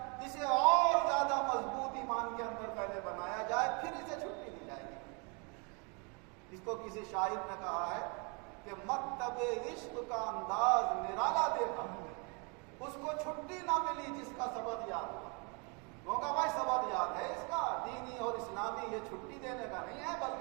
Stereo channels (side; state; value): left; quieter; 33.2 dB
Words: اسے اور زیادہ مضبوط ایمان کے اندر پہلے بنایا جائے، پھر اسے چھٹی دی جائے گی۔ اس کو کسی شاعر نے کہا ہے کہ مکتب عشق کا انداز نرالا دیکھا، اس کو چھٹی نہ ملی جس کا سبق یاد ہوا۔ وہ کہا بھائی سبق یاد ہے اس کا، دینی اور اسلامی، یہ چھٹی دینے کا نہیں ہے